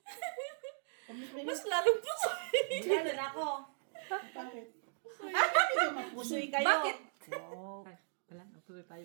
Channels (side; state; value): left; silent; digital silence